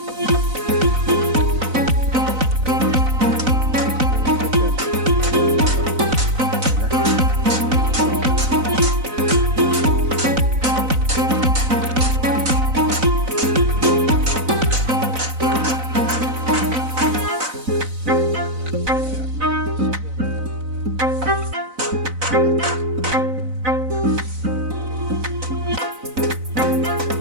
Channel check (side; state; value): left; late; 4.0 ms